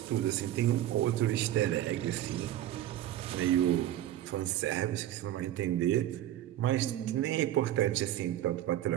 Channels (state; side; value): quieter; left; 12.9 dB